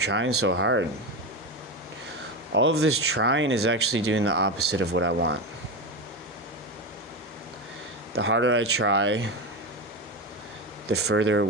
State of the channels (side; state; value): both; normal; correlation 0.18